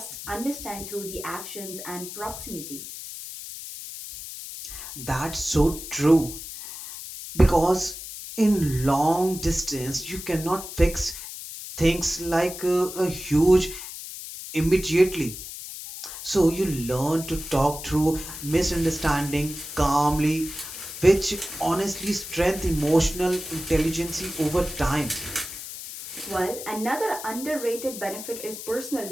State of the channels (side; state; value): left; noise; hiss, 10 dB below the sound